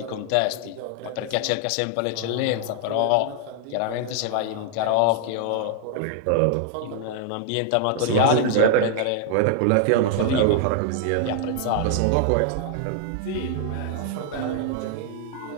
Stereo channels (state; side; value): different; both; correlation 0.00